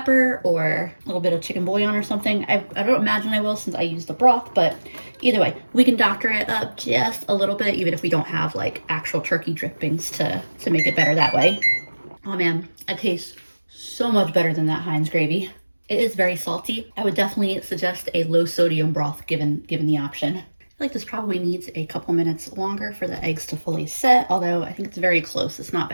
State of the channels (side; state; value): both; inverted; correlation -1.00